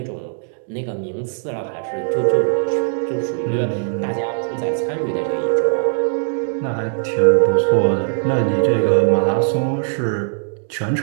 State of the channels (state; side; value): silent; left; digital silence